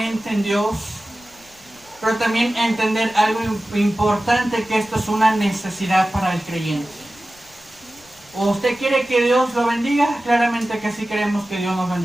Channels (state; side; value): noise; left; rumble, 28 dB below the sound